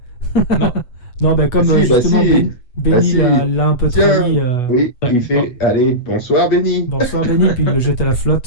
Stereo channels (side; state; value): right; late; 8.2 ms